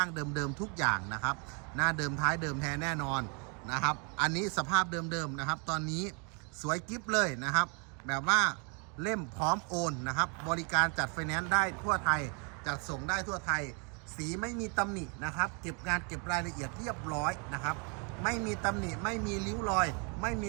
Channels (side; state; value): left; quieter; 35.8 dB